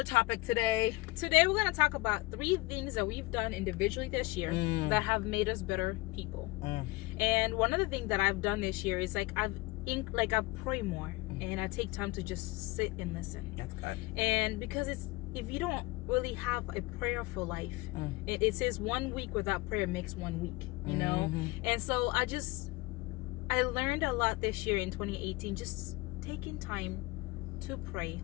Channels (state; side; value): quieter; right; 22.3 dB